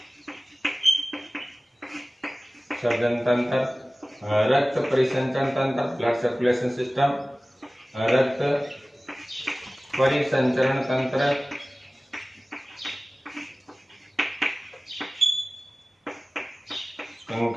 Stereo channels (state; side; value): normal; both; correlation 0.97